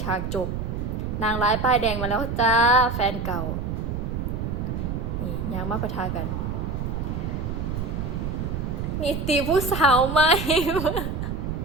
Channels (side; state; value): right; noise; rumble, 3 dB below the sound